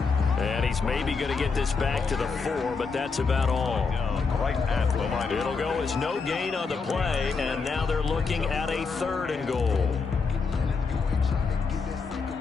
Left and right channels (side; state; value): right; quieter; 4.8 dB